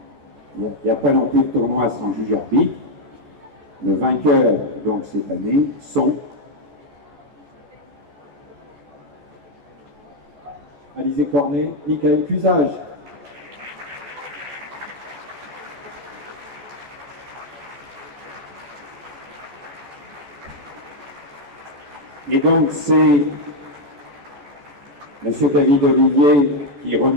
Il n'y a pas non plus de tournoi sans juge arbitre. Le vainqueur, donc, cette année, sont Alizé Cornet, Michael Cusage. Et donc, c'est M. David Olivier qui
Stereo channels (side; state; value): left; late; 14 ms